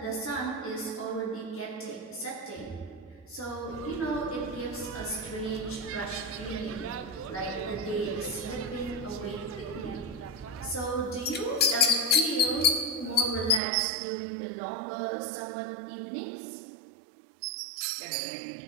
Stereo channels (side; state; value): left; drops out; at 13.6 s